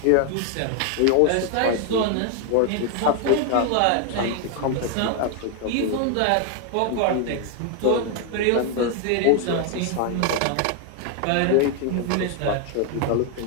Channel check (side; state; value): both; different; correlation 0.00